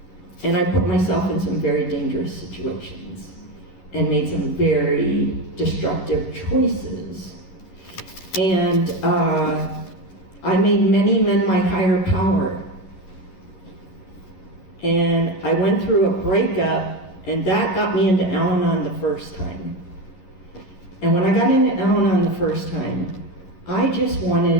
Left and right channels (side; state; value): right; late; 11 ms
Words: and I put myself in some very dangerous situations and made some very destructive choices. And I made many men my higher power. And I went through a breakup, and that got me into Al-Anon the first time. And when I got into Al-Anon the first time, I just